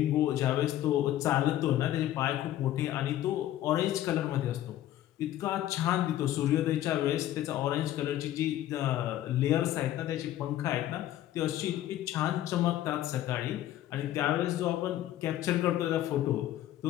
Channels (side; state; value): right; quieter; 13.2 dB